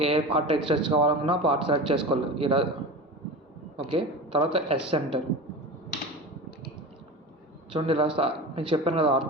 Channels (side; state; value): both; normal; correlation 0.30